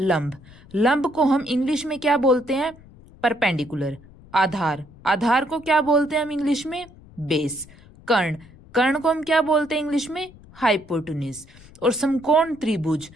लंब को हम इंग्लिश में क्या बोलते हैं? परपेंडिकुलर। आधार, आधार को क्या बोलते हैं हम इंग्लिश में? बेस। कर्ण, कर्ण को हम क्या बोलते हैं इंग्लिश में? हाइपोटेन्यूज। और समकोण त्रिभुज,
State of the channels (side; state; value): left; noise; rumble, 23 dB below the sound